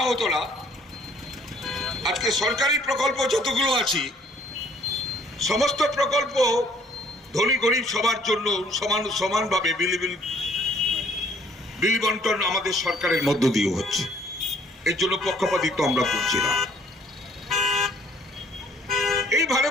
হতো না, আজকে সরকারি প্রকল্প যতগুলো আছে সমস্ত প্রকল্প ধনী গরিব সবার জন্য সমানভাবে বিলি বন্টন আমাদের সরকারের মধ্য দিয়ে হচ্ছে। এর জন্য পক্ষপাতিত্ব আমরা করছি না। এই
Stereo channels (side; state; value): both; normal; correlation 0.60